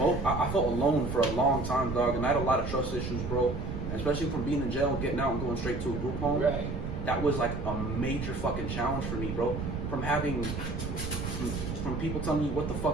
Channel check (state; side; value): noise; right; rumble, 4 dB below the sound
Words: felt alone for a long time, dog, and I had a lot of trust issues, bro. And especially from being in jail and getting out and going straight to a group home. Right. That was like a major fucking challenge for me, bro. From people telling you what to